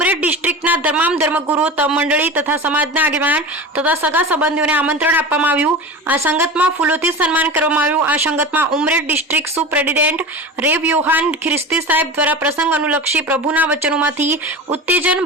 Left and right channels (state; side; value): normal; both; correlation 0.30